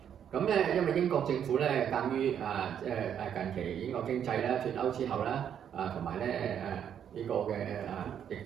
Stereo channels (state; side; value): quieter; left; 8.9 dB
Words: 咁咧，因為英國政府咧鑑於近期英國經濟咧脫歐之後啦，同埋咧呢個嘅疫